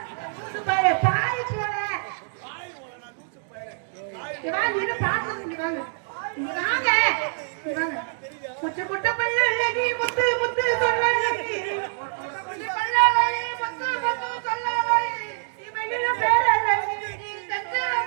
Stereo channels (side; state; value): left; silent; digital silence